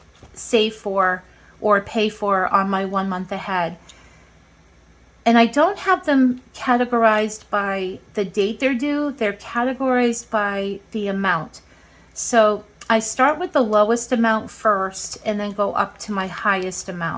save for or pay for on my 1 month ahead. And I don't have them categorized by the date they're due. They're categorized by the amount. So I start with the lowest amount first and then go up to my highest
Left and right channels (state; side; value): identical; both; correlation 1.00